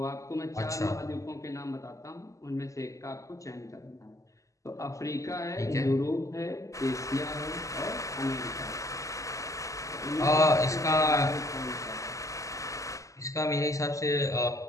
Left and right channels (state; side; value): late; right; 0.16 ms